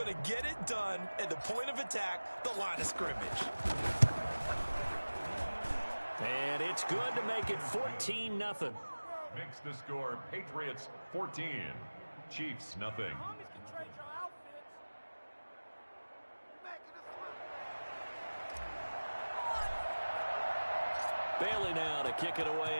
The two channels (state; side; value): inverted; both; correlation -1.00